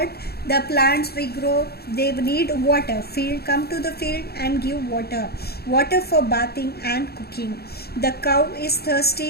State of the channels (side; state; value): right; late; 0.46 ms